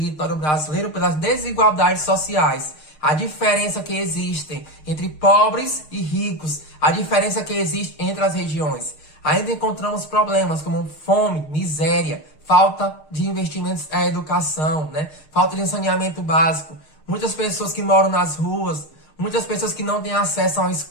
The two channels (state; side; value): late; right; 6.5 ms